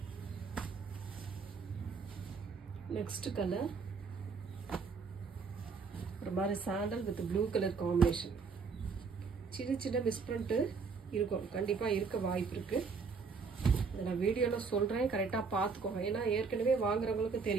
நெக்ஸ்ட் கலர் ஒரு மாதிரி sandal with blue colour combination. சின்ன சின்ன மிஸ்பிரிண்ட் இருக்கும். கண்டிப்பா இருக்க வாய்ப்பு இருக்கு. நான் வீடியோல சொல்றேன். கரெக்டா பாத்துக்கோங்க. ஏன்னா ஏற்கனவே வாங்குறவங்களுக்கு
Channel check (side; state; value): left; quieter; 5.0 dB